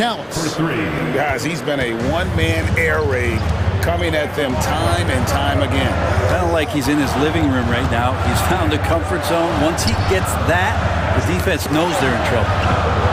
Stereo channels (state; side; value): identical; both; correlation 1.00